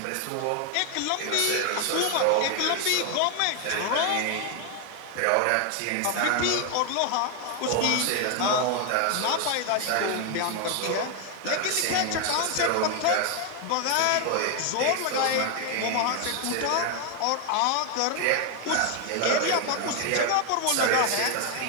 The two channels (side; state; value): both; different; correlation 0.00